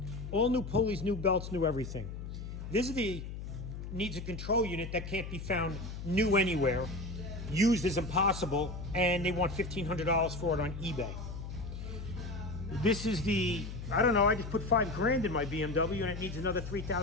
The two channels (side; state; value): left; noise; hum, 8 dB below the sound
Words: All new pulleys, new belts, new everything. This is the needs a control unit that can't be found new anywhere. Used is impossible, and they want $1,500 for it on eBay. This is the, I don't know, I just put $5,000 in my BMW and it needs another